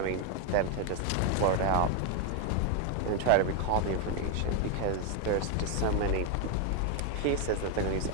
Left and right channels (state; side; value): different; both; correlation 0.01